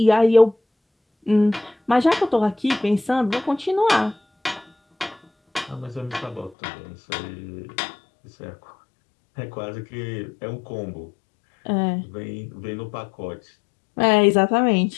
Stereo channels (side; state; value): right; drops out; at 6.6 s